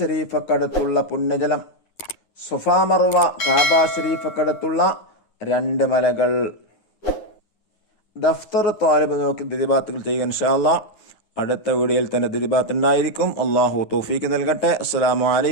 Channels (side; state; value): right; late; 9.6 ms